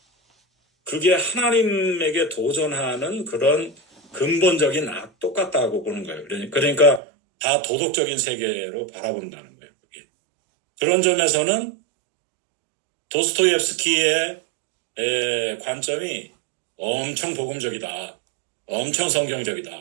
그게 하나님에게 도전하는 그런 근본적인 악 똑같다고 보는 거예요. 그러니까 다 도덕적인 세계로 바라본다는 거예요. 그게. 그런 점에서는 도스토옙스키의 관점이 엄청 복음적이다, 엄청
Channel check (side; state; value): left; drops out; at 7.0 s